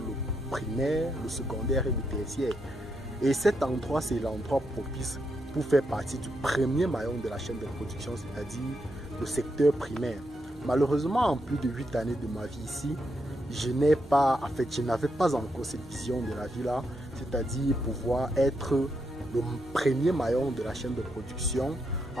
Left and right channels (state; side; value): normal; both; correlation 0.81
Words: primaire, le secondaire et le tertiaire. Et cet endroit, c'est l'endroit propice pour faire partie du premier maillon de la chaîne de production, c'est-à-dire le secteur primaire. Malheureusement, en plus de 8 années de ma vie ici, je n'avais pas encore cette vision de la vie là, c'est-à-dire pouvoir être le premier maillon de la chaîne de production